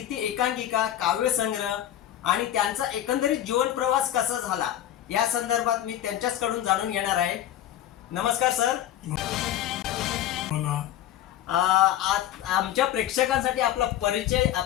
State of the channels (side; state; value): right; quieter; 12.0 dB